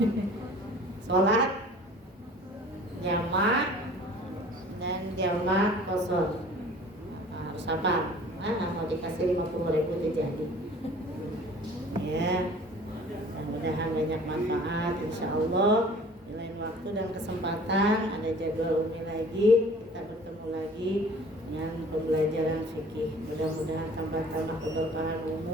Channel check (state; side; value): normal; both; correlation 0.48